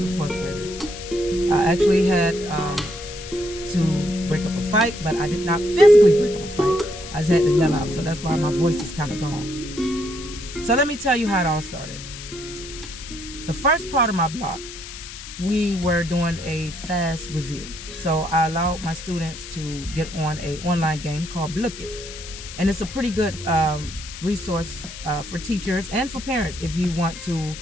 the fourth graders. I actually had to break up a fight, but I did not physically break up a fight. I just had to yell out, so that's why my voice is kind of gone. So let me tell you how it all started. The first part of my block, we were doing a fast review. So I allowed my students to get on an online game called Blook It. And it's a pretty good resource for teachers and for parents if you want to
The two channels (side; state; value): left; noise; hiss, 12 dB below the sound